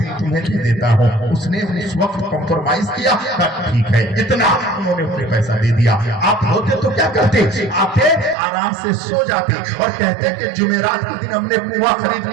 تمہیں دے دیتا ہوں. اس نے اس وقت کمپرومائز کیا, ٹھیک ہے اتنا, انہوں نے انہیں پیسہ دے دیا. آپ ہوتے تو کیا کرتے؟ آتے آرام سے سو جاتے اور کہتے کہ جمعرات کے دن ہم نے کنواں خرید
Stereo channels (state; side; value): drops out; left; at 8.3 s